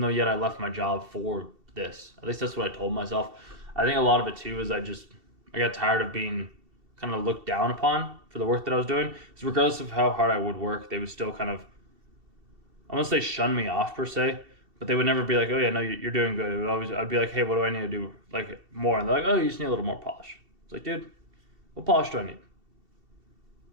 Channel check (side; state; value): left; late; 2.7 ms